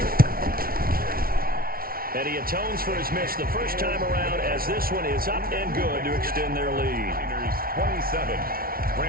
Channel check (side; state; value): left; late; 0.43 ms